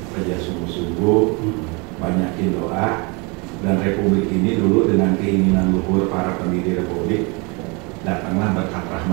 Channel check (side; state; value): left; quieter; 30.0 dB